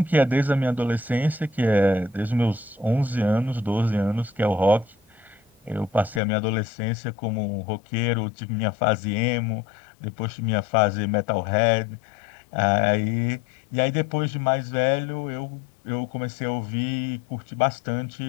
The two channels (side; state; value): right; drops out; at 6.2 s